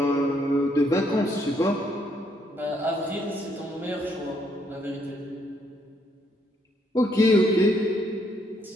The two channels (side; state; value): both; normal; correlation 0.71